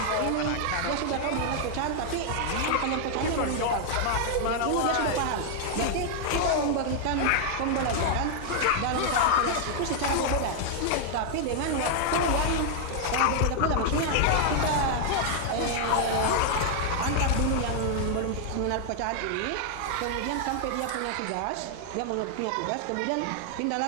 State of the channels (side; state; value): both; different; correlation 0.00